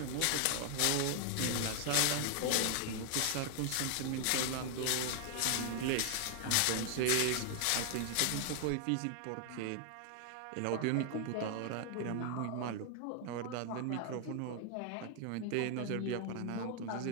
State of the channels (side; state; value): both; different; correlation 0.00